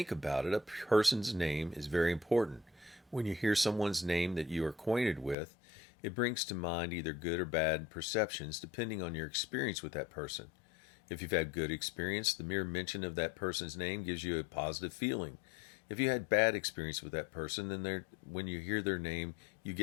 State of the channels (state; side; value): drops out; right; at 5.4 s